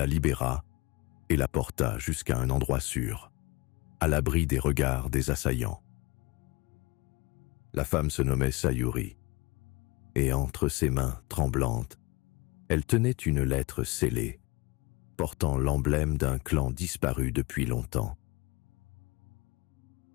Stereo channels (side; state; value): right; quieter; 25.1 dB